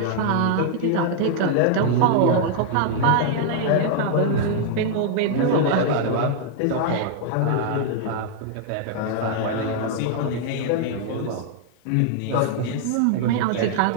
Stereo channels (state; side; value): different; both; correlation -0.01